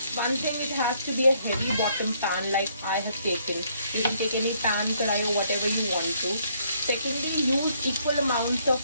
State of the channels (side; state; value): both; inverted; correlation -0.68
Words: One thing, it has to be a heavy bottom pan like I have taken. You can take any pan, karai or whatever you want to. Secondly, use equal amounts of